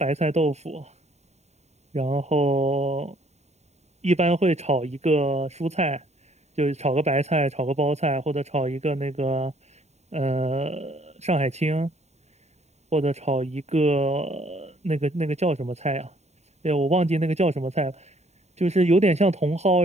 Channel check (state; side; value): late; left; 0.32 ms